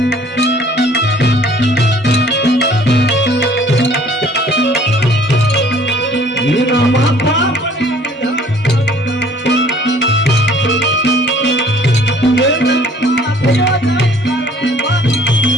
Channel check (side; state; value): both; normal; correlation 0.55